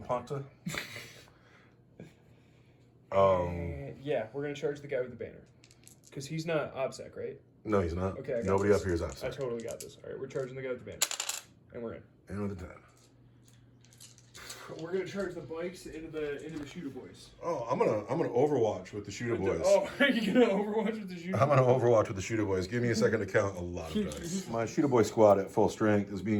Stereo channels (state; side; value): identical; both; correlation 1.00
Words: Yeah, we're going to charge the guy with the banner. Because he's not OBSEC, right? No, he's not. Okay, I got Nobody this. up here is I outside. totally got this. All right, we're charging the guy with the banner. And we're in. And with a 10. We're going to charge the bikes into the shooter boys. Oh, I'm gonna Overwatch with the shooter boys. Oh, are you going to overwatch with the shooter I'm gonna Overwatch with the shooter boys. Give me a second to count a lot of dice. My shooter boy squad at full strength is